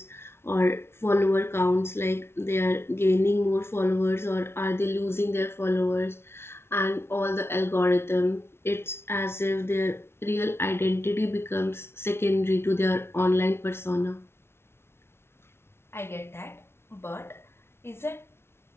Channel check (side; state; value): right; late; 0.12 ms